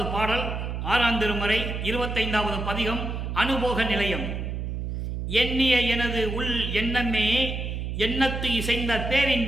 பாடல் 6ஆம் திருமுறை 25வது பதிகம் அனுபோக நிலையம். எண்ணிய எனது உள் எண்ணமே, எண்ணத்து இசைந்த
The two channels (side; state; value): right; noise; hum, 4 dB below the sound